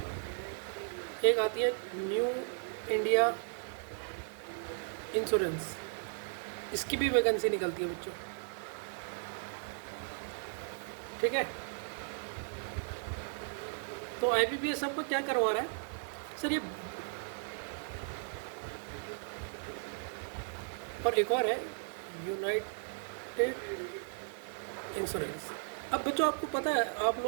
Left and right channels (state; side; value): silent; left; 54 dB below the other